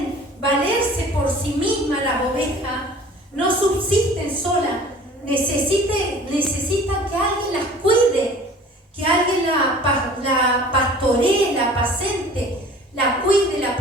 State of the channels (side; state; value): both; normal; correlation 0.46